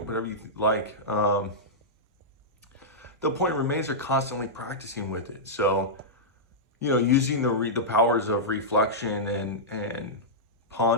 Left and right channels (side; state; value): both; normal; correlation -0.10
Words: you like. The point remains they're constantly practicing with it. So, using the powers of reflection and